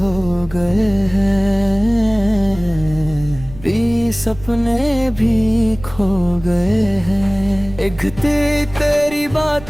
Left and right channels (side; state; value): right; noise; rumble, 16 dB below the sound